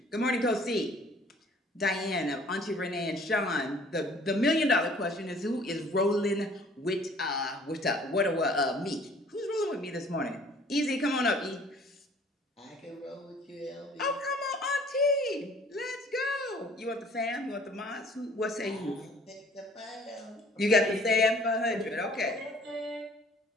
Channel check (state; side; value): normal; both; correlation 0.54